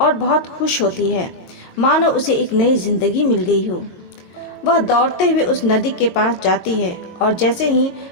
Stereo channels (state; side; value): late; right; 22 ms